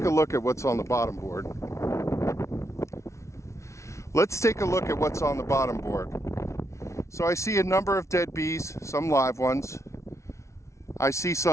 a look at what's on the bottom board. Let's take a look at what's on the bottom board. So I see a number of dead bees, some live ones. I see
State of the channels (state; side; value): late; right; 0.14 ms